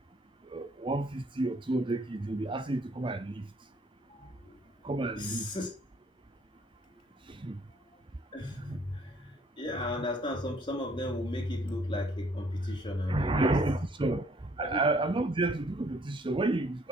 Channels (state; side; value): normal; both; correlation 0.62